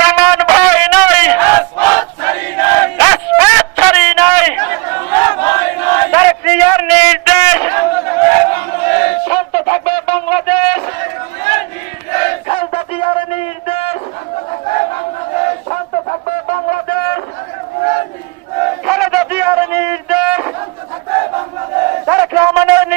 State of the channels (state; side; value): quieter; left; 28.1 dB